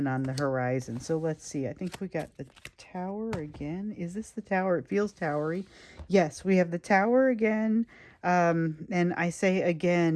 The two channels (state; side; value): identical; both; correlation 1.00